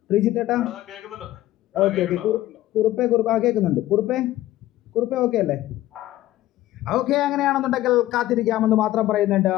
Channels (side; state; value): right; quieter; 15.1 dB